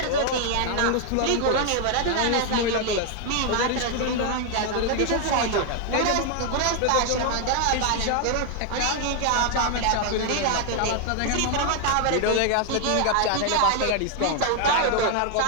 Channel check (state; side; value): different; both; correlation 0.00